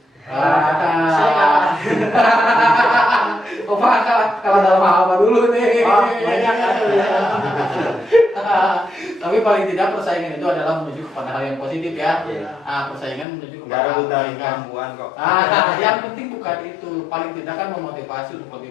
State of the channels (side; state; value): right; drops out; at 13.2 s